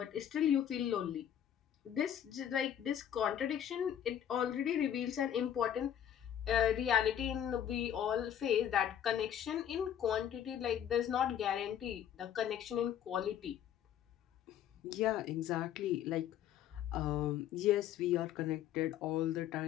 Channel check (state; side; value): quieter; right; 9.9 dB